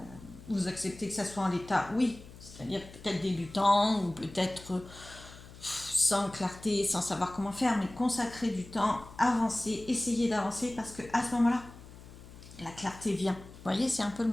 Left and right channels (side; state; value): left; noise; hum, 18 dB below the sound